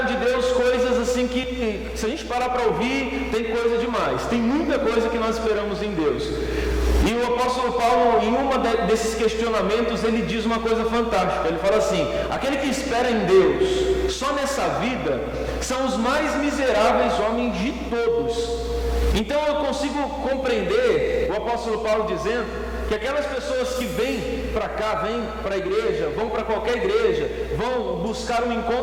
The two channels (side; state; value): both; identical; correlation 1.00